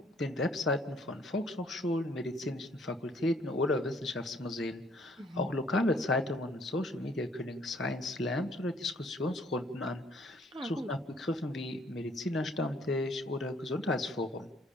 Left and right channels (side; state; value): both; normal; correlation 0.62